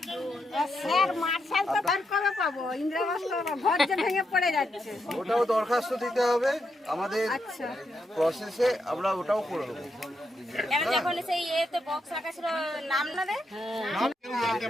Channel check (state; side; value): normal; both; correlation 0.82